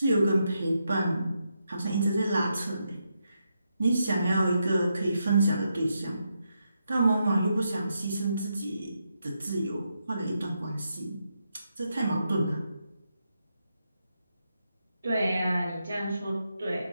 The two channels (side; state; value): both; inverted; correlation -0.83